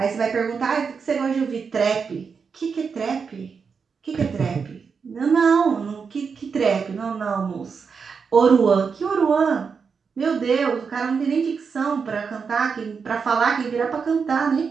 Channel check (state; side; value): quieter; left; 5.7 dB